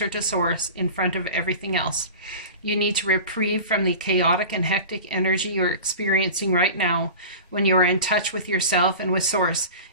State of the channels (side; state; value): both; inverted; correlation -0.34